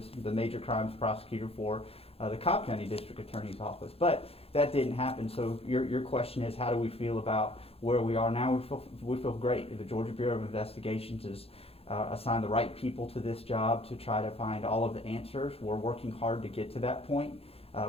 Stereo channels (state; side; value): late; right; 0.28 ms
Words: the major crimes prosecutor for the Cobb County District Attorney's office. But that didn't happen. So your question is, how do we feel about where we are now? We feel great. The Georgia Bureau of Investigations has assigned the right people to this job to try to find all of the answers. We're working hard to get to that point.